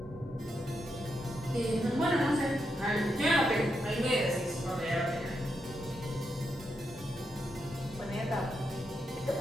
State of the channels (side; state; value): both; normal; correlation 0.84